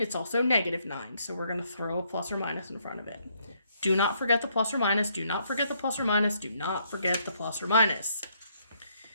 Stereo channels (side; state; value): both; inverted; correlation -0.72